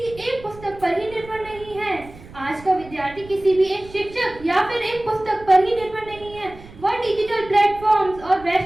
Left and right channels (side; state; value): right; noise; rumble, 19 dB below the sound